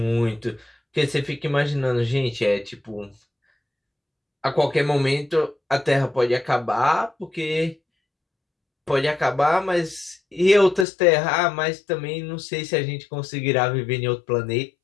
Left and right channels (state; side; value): drops out; right; at 10.9 s